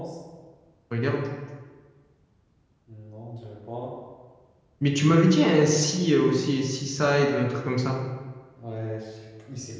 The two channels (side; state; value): both; identical; correlation 1.00